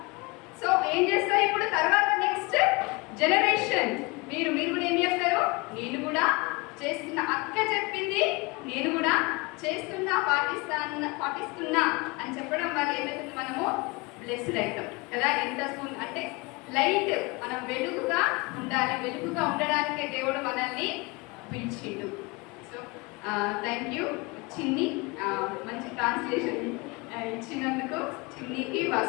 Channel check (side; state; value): right; quieter; 26.3 dB